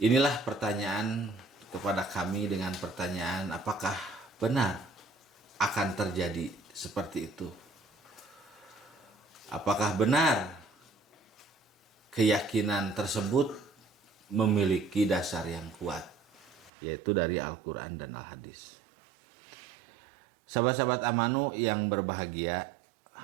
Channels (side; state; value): left; drops out; at 16.7 s